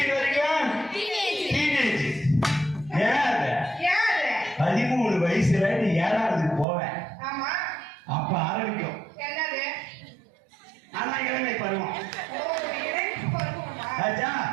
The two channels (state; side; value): drops out; left; at 6.7 s